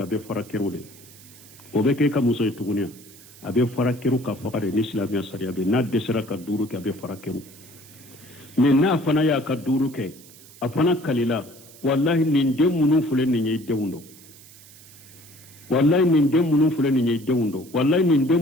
be farakerude obeke ka muso itugunia abe farakeru ka fakare ni islamia sariya be na desera ka duru ke abe farakeru mais na fana ya ka duru ke afana kalila wallahi nin demunu fule ni nyei dewundo wallahi nin demunu fule ni nyei dewundo wallahi nin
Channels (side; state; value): right; noise; hiss, 21 dB below the sound